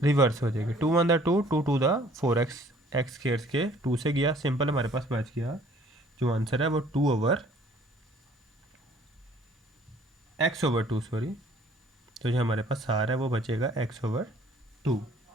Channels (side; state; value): both; normal; correlation 0.57